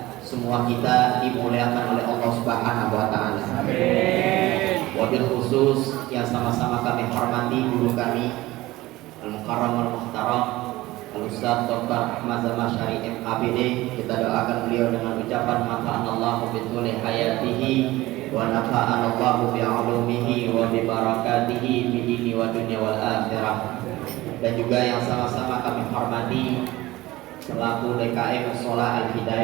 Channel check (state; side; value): quieter; left; 18.3 dB